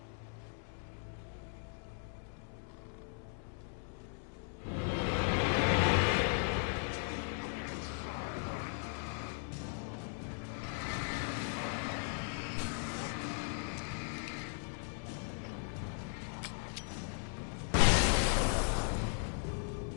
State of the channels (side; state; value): right; silent; 53 dB below the other